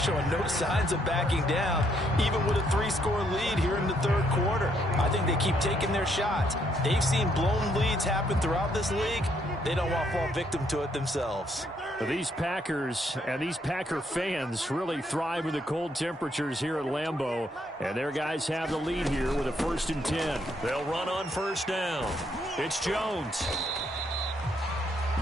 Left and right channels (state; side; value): normal; both; correlation 0.72